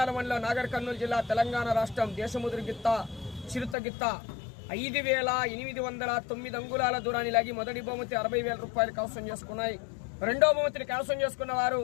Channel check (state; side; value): drops out; right; at 3.8 s